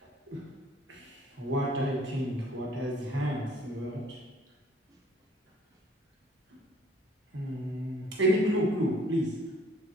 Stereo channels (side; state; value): both; normal; correlation 0.58